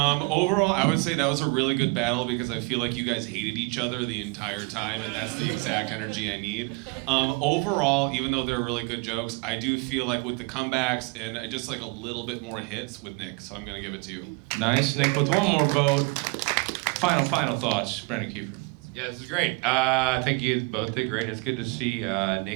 Overall, I would say that was a really good battle because I feel like you guys hated each other the entire time, and that's the exact energy I need. Overall, even though they're really good jokes, I do feel like with the comebacks and just like a little bit more hits with Nick, so I'm gonna give it to you. Nice, Nick with 1 more vote. Final thoughts, Brandon Kiefer. Yeah, this is great. I think you both did great. It's good to see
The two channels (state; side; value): quieter; left; 28.5 dB